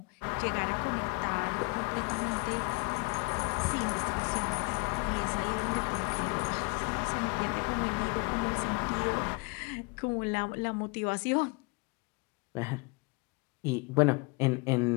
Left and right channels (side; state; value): right; quieter; 28.8 dB